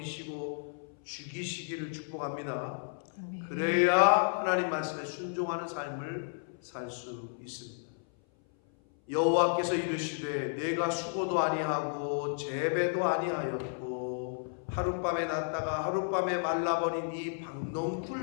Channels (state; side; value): silent; right; 56 dB below the other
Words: 죽이시기를 축복합니다. 아멘. 그래야 하나님 말씀에 순종하는 삶을 살 수 있습니다. 여호와께서 이르시되 내가 수고도 아니하고 재배도 아니하였고 하룻밤에 났다가 하룻밤에 말라버린 이